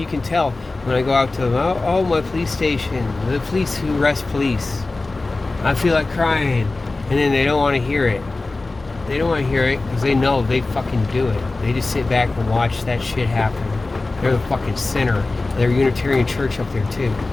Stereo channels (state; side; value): quieter; right; 3.3 dB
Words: can tell when I go out to them, oh my police station, the police who arrest police. I feel like crying. And then they don't want to hear it. They don't want to hear it because they know they fucking do it. They just sit back and watch that shit happen. They're the fucking center of their Unitarian church up there too.